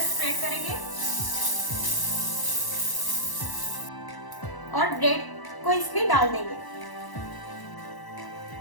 स्प्रेड करेंगे और ब्रेड को इसमें डाल देंगे।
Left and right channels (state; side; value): late; right; 1.0 ms